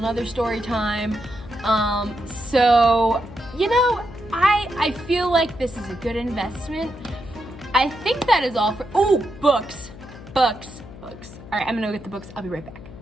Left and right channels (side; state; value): left; noise; hum, 16 dB below the sound